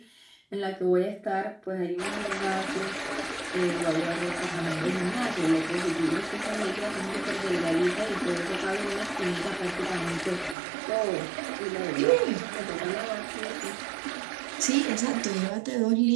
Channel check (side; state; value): left; drops out; at 10.6 s